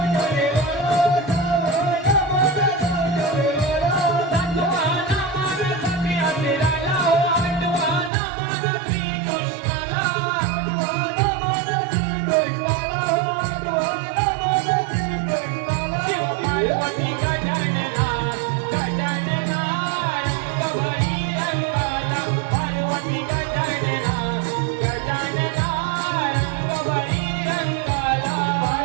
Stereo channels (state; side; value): drops out; left; at 8.1 s